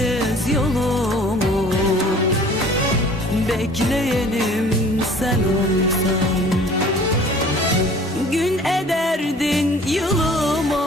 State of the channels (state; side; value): normal; both; correlation 0.50